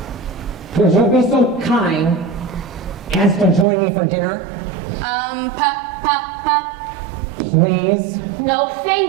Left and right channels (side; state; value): left; drops out; at 3.7 s